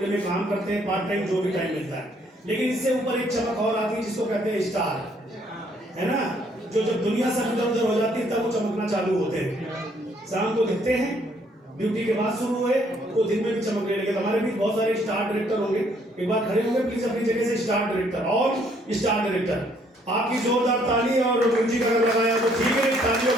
में काम करते हैं, पार्ट टाइम जो भी टाइम मिलता है। लेकिन इससे ऊपर एक चमक और आती है जिसको कहते हैं स्टार, है ना, जो जब दुनिया सब इधर उधर हो जाती है तब वो चमकना चालू होते हैं। शाम को दिखते हैं, ड्यूटी के बाद शुरू हुए तो दिन में भी चमकने लगे। तो हमारे भी बहुत सारे स्टार डायरेक्टर होंगे, एक बार खड़े होंगे प्लीज अपनी जगह से। स्टार डायरेक्टर और स्टार डायरेक्टर, आपकी जोरदार ताली और म्यूजिक अगर लगाया तो ठीक है, तालियों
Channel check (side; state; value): both; normal; correlation 0.66